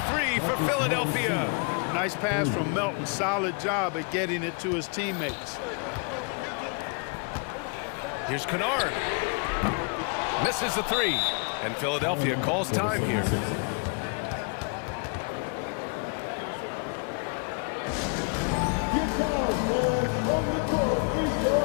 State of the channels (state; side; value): quieter; right; 36.5 dB